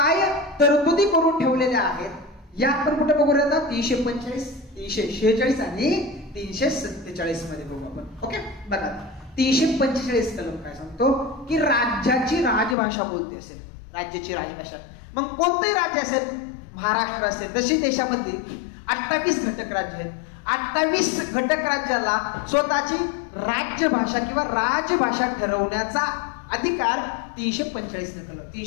तरतुदी करून ठेवलेल्या आहेत या आपण कुठे बघू आता 345, 346 आणि 347 मध्ये बघू आपण. ओके. बघा 345 कलम काय सांगतो की राज्याची राजभाषा कोणती असेल, राज्याची राजभाषा. मग कोणते राज्य असेल, महाराष्ट्र असेल. जशी देशामध्ये 28 घटक राज्य आहेत. 28 घटक राज्याला स्वतःची राज्यभाषा किंवा राजभाषा ठरवण्याचा अधिकार 345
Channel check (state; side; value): drops out; right; at 12.8 s